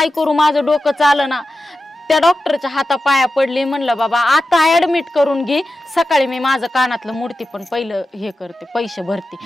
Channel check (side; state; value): both; normal; correlation 0.92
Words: करू, माझं डोकं चालं ना. त्या डॉक्टरच्या हातापाया पडली, म्हणलं बाबा आता ऍडमिट करून घे, सकाळी मी माझं कानातलं मूर्ती पण पहिलं हे करते, पैसे भरते.